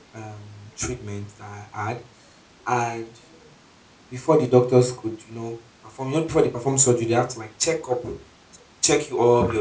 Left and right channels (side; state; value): both; identical; correlation 1.00